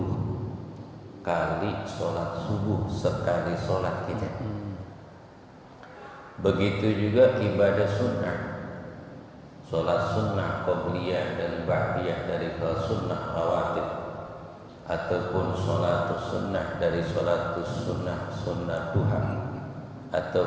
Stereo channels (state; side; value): identical; both; correlation 1.00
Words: kali sholat subuh sekali sholat kita. Begitu juga ibadah sunnah, sholat sunnah qobliyah dan ba'diyah dari sholat sunnah rawatib, ataupun sholat sunnah dari sholat sunnah duha,